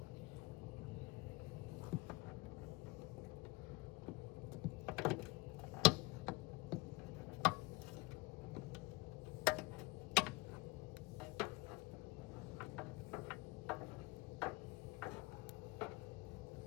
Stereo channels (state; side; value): quieter; right; 23.6 dB